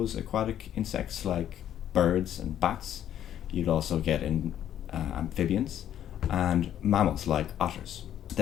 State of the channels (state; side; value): quieter; right; 10.8 dB